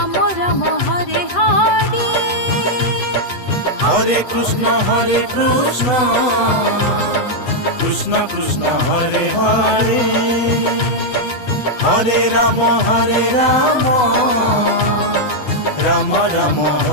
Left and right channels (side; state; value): right; late; 8.1 ms